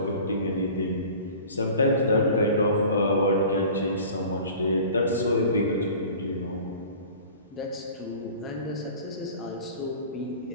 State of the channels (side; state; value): both; inverted; correlation -0.42